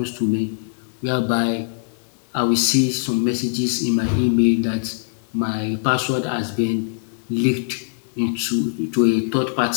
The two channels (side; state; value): right; silent; digital silence